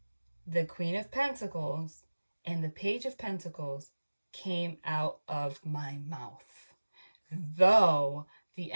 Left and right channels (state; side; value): inverted; both; correlation -1.00